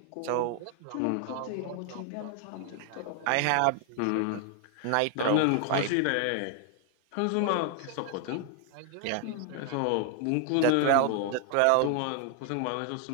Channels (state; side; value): different; both; correlation 0.00